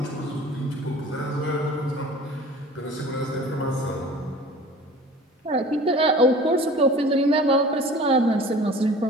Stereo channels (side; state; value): both; normal; correlation 0.43